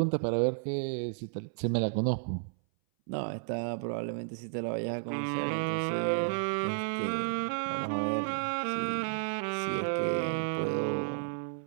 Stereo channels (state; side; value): silent; left; 56 dB below the other